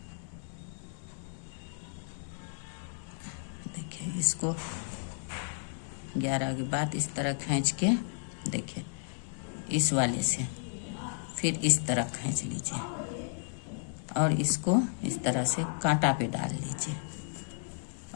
देखिए इसको 11 के बाद इस तरह खींच के देखिए इस वाले से, फिर इस तरह खींच लीजिए और इसको इस तरह से कांटा पे डाल लीजिए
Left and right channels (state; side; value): silent; right; digital silence